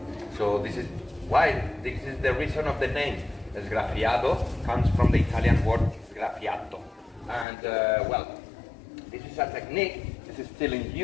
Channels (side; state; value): right; drops out; at 7.5 s